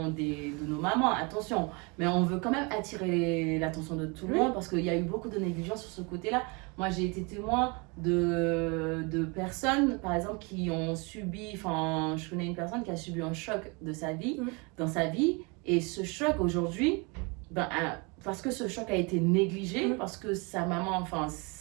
de nos mamans, attention, mais on veut quand même attirer l'attention de tout le monde parce qu'il y a eu beaucoup de négligence sur ce côté-là. Moi, j'ai été témoin de personnes, par exemple, qui ont subi, je connais une personne qui a subi un choc de sa vie, dans sa vie. Et ce choc aujourd'hui, parce que ce choc a été négligé, parce que sa maman,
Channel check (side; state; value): left; quieter; 30.0 dB